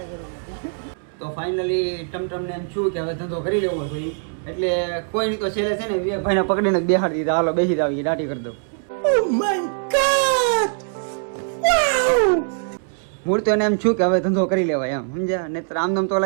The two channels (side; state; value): left; silent; 64 dB below the other